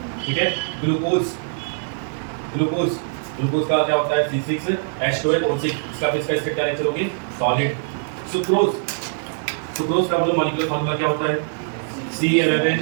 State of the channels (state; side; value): silent; left; 64 dB below the other